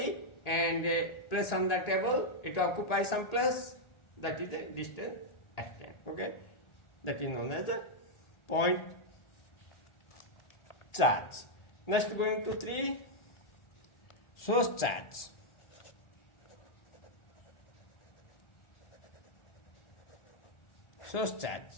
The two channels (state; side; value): late; right; 1.4 ms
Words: and place on the table. It occupies some place. That is the distance extent. Okay, that is known as a point charge. Next, going to 3, source charge. Source charge,